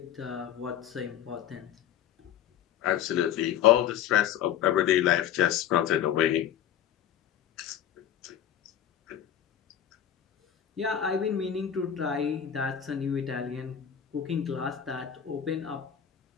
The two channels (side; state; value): right; quieter; 9.9 dB